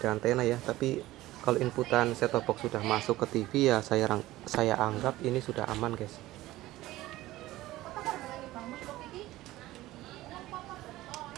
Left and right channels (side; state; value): left; quieter; 16.8 dB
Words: ada antena ya, tapi kalau inputan set top box sudah masuk ke TV ya, saya anggap ini sudah aman guys.